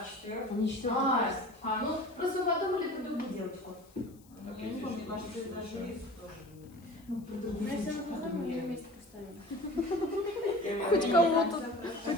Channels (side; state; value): left; noise; hiss, 28 dB below the sound